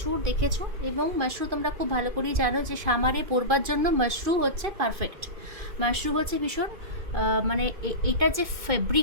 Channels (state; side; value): late; left; 2.4 ms